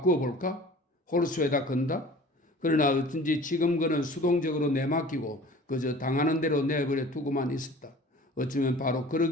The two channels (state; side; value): normal; both; correlation 0.45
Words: 볼까? 홀수에다 건다? 그러나 어쩐지 지금 그는 수동적으로 내맡기고 그저 당하는 대로 내버려 두고만 있었다. 어쩌면 바로